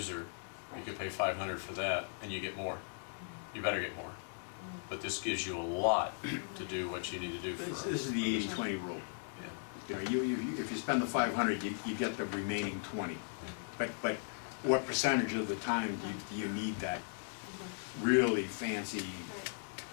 You could pay $500 for that, and you get more. You better get more. But this gives you a lot to do what you need to do for. This is the 80-20 rule. Yeah. You know, if you spend the 500, you get the remaining 20. But what percentage of the time do you need that really fancy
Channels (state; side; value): silent; right; digital silence